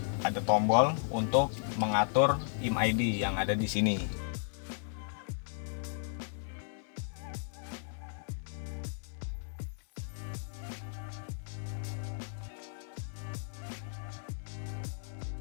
tombol untuk mengatur IMEI yang ada di sini.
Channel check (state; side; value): silent; right; 55 dB below the other